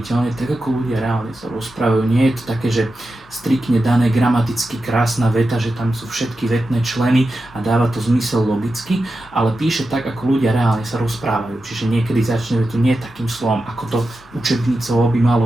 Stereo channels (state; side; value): normal; both; correlation 0.91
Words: tak ako ľudia reálne sa rozprávajú. Nie je to také, že striktne dané gramaticky krásna veta, že tam sú všetky vetné členy a dáva to zmysel logicky, ale píše tak, ako ľudia reálne sa rozprávajú. Čiže niekedy začne vetu nie takým slovom, ako to učebnicovo by malo